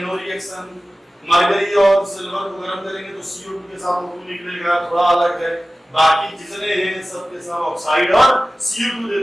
नो रिएक्शन। मरकरी और सिल्वर को गर्म करेंगे तो CO2 के साथ O2 निकलेगा, थोड़ा अलग है। बाकी जितने हैं सबके सब ऑक्साइड और CO2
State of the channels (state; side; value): normal; both; correlation 0.96